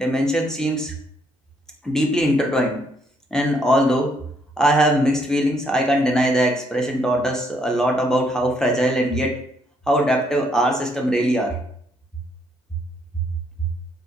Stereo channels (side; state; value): both; normal; correlation 0.71